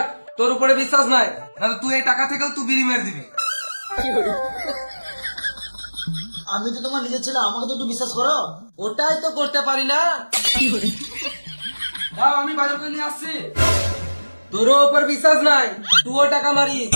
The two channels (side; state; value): both; inverted; correlation -1.00